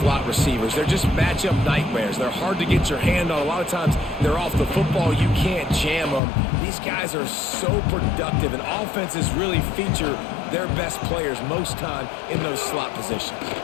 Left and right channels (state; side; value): drops out; right; at 6.2 s